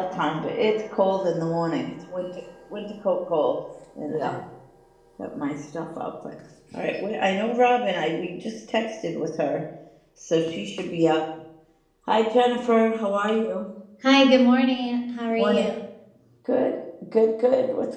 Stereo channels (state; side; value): identical; both; correlation 1.00